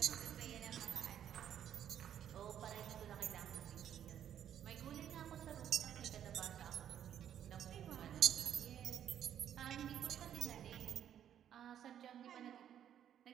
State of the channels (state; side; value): quieter; left; 9.9 dB